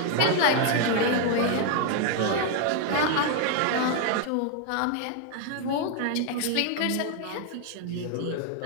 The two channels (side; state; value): both; different; correlation 0.00